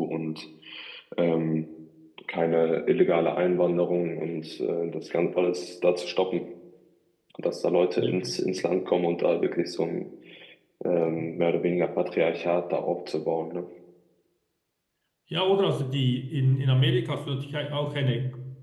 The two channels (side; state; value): both; identical; correlation 1.00